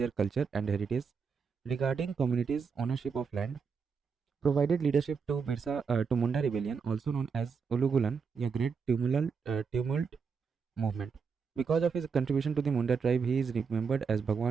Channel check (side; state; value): left; quieter; 5.7 dB